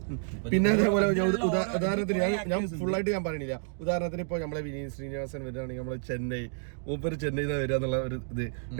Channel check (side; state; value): left; silent; digital silence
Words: പിന്നെ അതേപോലെ ഉദാഹരണത്തിന് ഞാൻ ഫുള്ളായിട്ട് ഞാൻ പറയണില്ല. ഉദാഹരണത്തിന് ഇപ്പൊ നമ്മളെ വിനീത് ശ്രീനിവാസൻ വരികയാണെങ്കിൽ നമ്മളെ മൂപ്പര് ചെന്നൈയിൽ വരിക എന്നുള്ള ഒരു ഇത്.